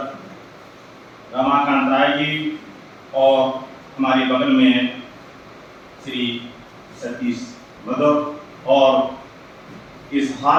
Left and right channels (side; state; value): both; identical; correlation 1.00